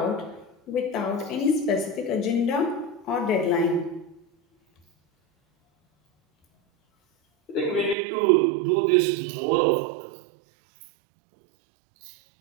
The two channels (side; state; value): left; drops out; at 8.0 s